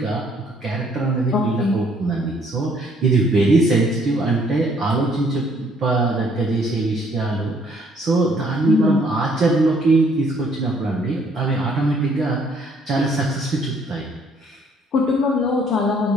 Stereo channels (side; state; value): both; normal; correlation 0.64